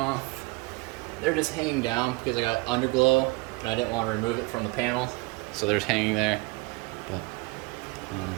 They're just hanging down because I got underglow and I didn't want to remove it from the panel, so they're just hanging there. But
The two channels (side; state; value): left; quieter; 24.7 dB